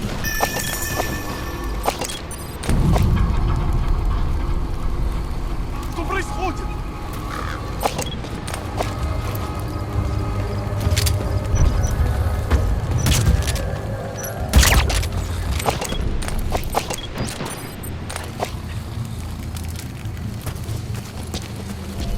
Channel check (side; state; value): both; identical; correlation 1.00